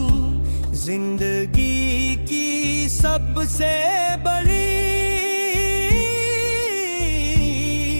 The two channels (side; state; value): both; inverted; correlation -1.00